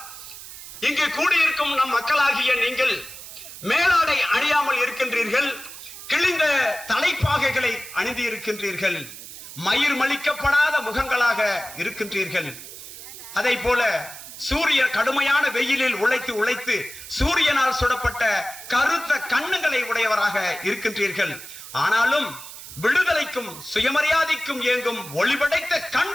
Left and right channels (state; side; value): noise; right; hiss, 13 dB below the sound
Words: இங்கு கூடியிருக்கும் நம் மக்களாகிய நீங்கள் மேலாடை அணியாமல் இருக்கின்றீர்கள், கிழிந்த தலைப்பாகைகளை அணிந்து இருக்கின்றீர்கள், மயிர் மலிக்கப்படாத முகங்களாக இருக்கின்றீர்கள். அதை போல சூரிய கடுமையான வெயிலில் உழைத்து சூரியனால் சுடப்பட்ட கருத்த கண்ணுகளை உடையவராக இருக்கின்றீர்கள். ஆனாலும் விடுதலைக்கும் சுயமரியாதைக்கும் இயங்கும் ஒளிபடைத்த